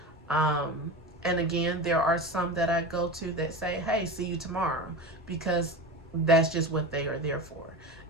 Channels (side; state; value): both; normal; correlation 0.27